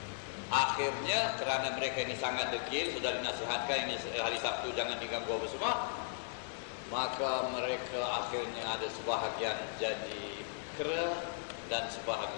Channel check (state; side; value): silent; right; digital silence